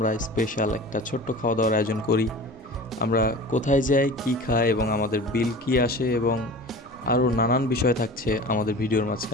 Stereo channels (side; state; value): both; normal; correlation 0.37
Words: স্পেশাল একটা ছোট্ট খাওয়া দাওয়ার আয়োজন করি। আমরা কোথায় যাই, কি খাই এবং আমাদের বিল কি আসে এবং আরও নানান বিষয় থাকছে আমাদের ভিডিওর